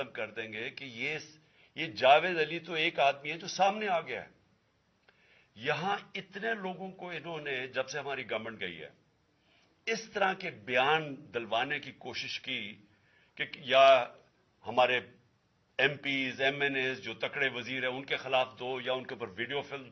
کر دیں گے، کہ یہ جاوید علی تو ایک آدمی ہے جو سامنے آ گیا ہے۔ یہاں اتنے لوگوں کو انہوں نے، جب سے ہماری گورنمنٹ گئی ہے، اس طرح کے بیان دلوانے کی کوشش کی کہ یا ہمارے M Ps, M N As جو تکڑے وزیر ہیں ان کے خلاف دو، یا ان کے اوپر ویڈیو فلم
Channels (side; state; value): both; identical; correlation 1.00